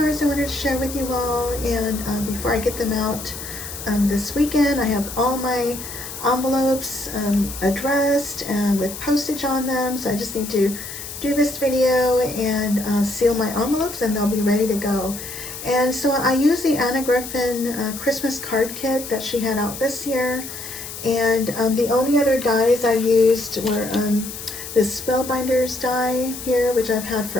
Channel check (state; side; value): noise; left; hiss, 10 dB below the sound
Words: I wanted to share with you all, and before I get them out this weekend, I have all my envelopes addressed and with postage on them, so I just need to do this video and seal my envelopes and they'll be ready to go. And so I use the Anna Griffin Christmas card kit that she had out this year. And the only other dies I used were this Spellbinders die here, which I've had